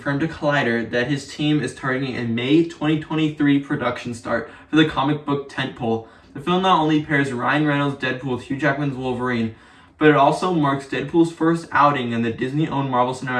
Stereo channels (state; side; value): identical; both; correlation 1.00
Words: to Collider that his team is targeting a May 2023 production start for the comic book tentpole. The film not only pairs Ryan Reynolds' Deadpool with Hugh Jackman's Wolverine, but it also marks Deadpool's first outing in the Disney-owned Marvel